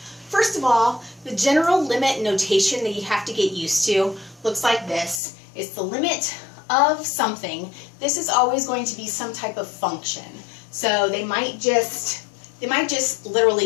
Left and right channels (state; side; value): drops out; right; at 5.2 s